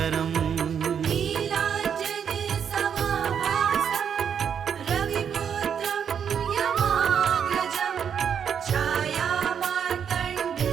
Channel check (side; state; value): left; quieter; 7.8 dB